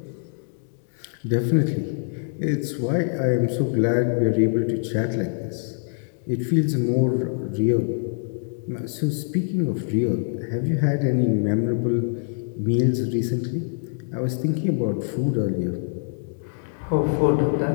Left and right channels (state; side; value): silent; right; digital silence